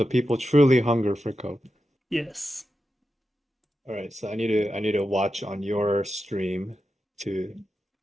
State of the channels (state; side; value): normal; both; correlation 0.90